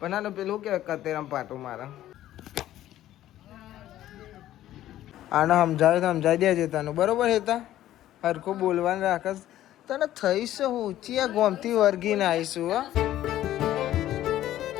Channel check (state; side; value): quieter; right; 13.3 dB